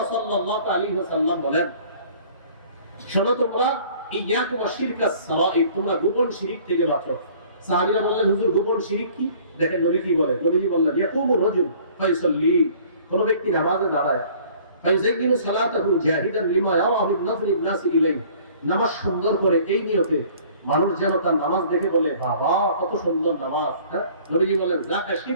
সাল্লাল্লাহু আলাইহি ওয়াসাল্লাম বলেন, শোনো তোমরা, ইয়াকুম আশ-শিরকাস সারাঈর, তোমরা গোপন শিরক থেকে বাঁচো। সাহাবীরা বললেন, হুজুর গোপন শিরক কি? দেখেন নবী কি বলেন। নবীজি বললেন, ইয়াকুমু রাজুল ফায়ুসাল্লি, কোন ব্যক্তি নামাজে দাঁড়ায়, ফায়ুযাইয়িনু সালাতাহু জাহিদান লিমা ইয়ারা মিন নাযরিন নাসি ইলাইহি, নামাজ সুন্দর করে এই নিয়তে মানুষ যেন তার নামাজ দেখে বলে, বাবা কত সুন্দর নামাজ। হ্যাঁ, নবীজি বলেন, যাকা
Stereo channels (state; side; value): inverted; both; correlation -0.53